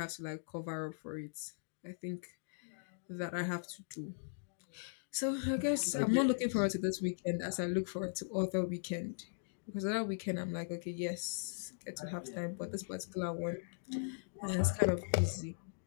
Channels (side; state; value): right; silent; digital silence